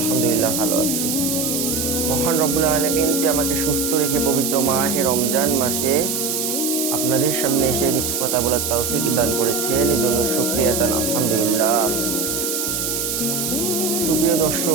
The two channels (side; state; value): right; noise; hiss, 1 dB below the sound